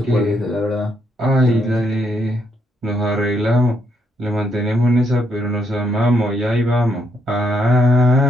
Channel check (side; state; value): both; normal; correlation 0.76